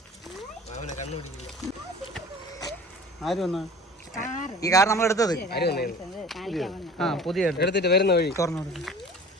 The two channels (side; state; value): both; normal; correlation 0.43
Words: ഈ കാർ നമ്മൾ എടുത്തത് പുതിയ എടുത്തിട്ട് വരുന്ന വഴി തുറന്നു.